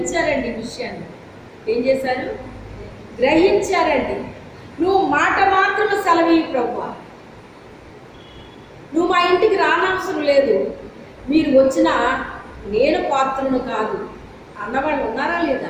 విషయాన్ని. ఏం చేశారు? గ్రహించారండి. నువ్వు మాట మాత్రం సెలవి ప్రభువా, నువ్వు మా ఇంటికి రానవసరం లేదు, మీరు వచ్చినా నేను పాత్రను కాదు అన్నవాళ్ళు ఉన్నారా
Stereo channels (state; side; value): identical; both; correlation 1.00